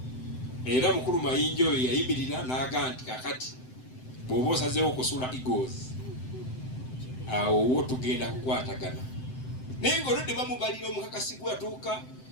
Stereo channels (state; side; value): late; right; 7.8 ms